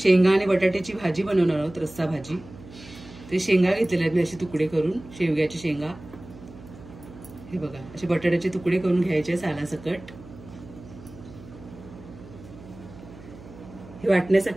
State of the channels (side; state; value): right; noise; hum, 18 dB below the sound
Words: आणि बटाट्याची भाजी बनवणार आहोत, रस्सा भाजी। ते शेंगा घेतलेले आहेत मी असे तुकडे करून, शेवग्याची शेंगा। हे बघा, असे बटाट्याचे तुकडे करून घ्यायचे सालासकट। हे